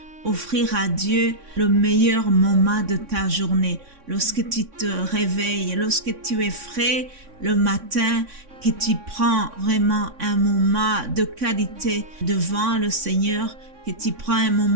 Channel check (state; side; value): late; left; 3.6 ms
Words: offrir à Dieu le meilleur moment de ta journée. Lorsque tu te réveilles, lorsque tu es frais le matin, que tu prends vraiment un moment de qualité devant le Seigneur, que tu prends un